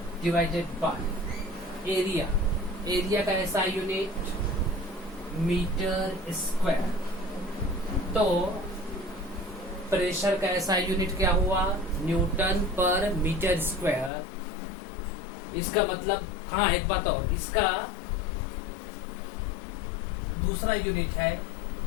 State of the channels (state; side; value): drops out; right; at 14.1 s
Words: divided by area का ऐसा यूनिट मीटर स्क्वायर। तो प्रेशर का ऐसा यूनिट क्या हुआ? न्यूटन पर मीटर स्क्वायर। इसका मतलब, हाँ एक बात और, इसका दूसरा यूनिट है